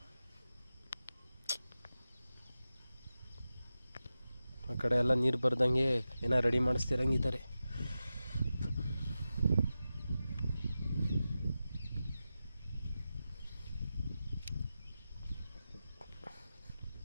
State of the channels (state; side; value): inverted; both; correlation -0.93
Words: ಆ ಕಡೆ ಎಲ್ಲ ನೀರು ಬರ್ದಂಗೆ ಏನೋ ರೆಡಿ ಮಾಡಿಸ್ತಿರಂಗಿದ್ದಾರೆ.